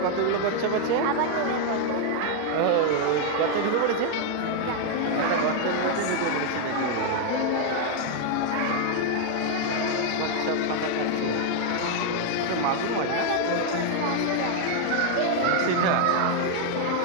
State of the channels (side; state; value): both; different; correlation 0.00